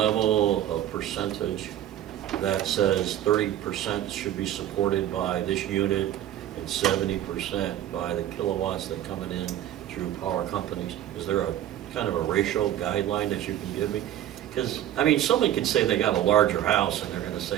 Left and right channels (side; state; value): left; quieter; 11.8 dB